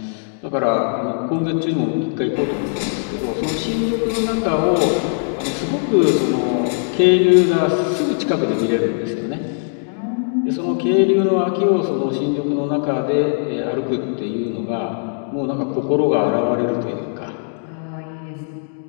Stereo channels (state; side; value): silent; right; digital silence